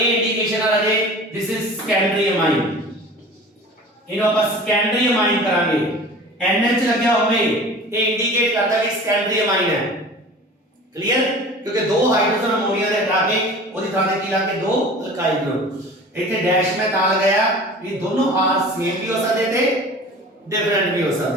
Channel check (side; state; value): both; normal; correlation 0.40